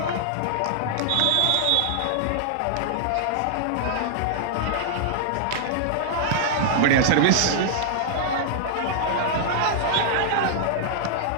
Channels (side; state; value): both; different; correlation -0.01